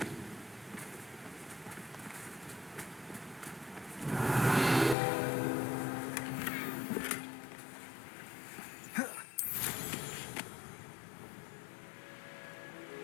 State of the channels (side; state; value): right; drops out; at 5.0 s